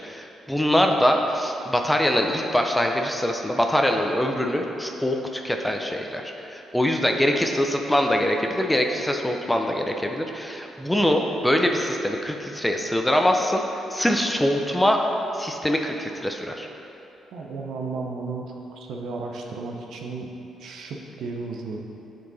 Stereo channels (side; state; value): both; normal; correlation 0.89